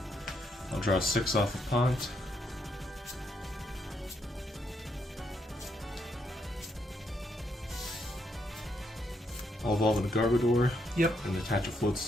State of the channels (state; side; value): normal; both; correlation 0.76